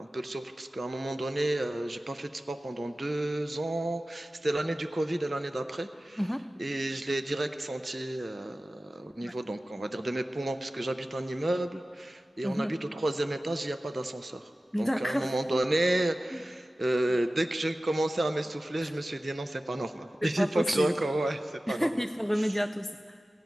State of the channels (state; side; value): normal; both; correlation 0.96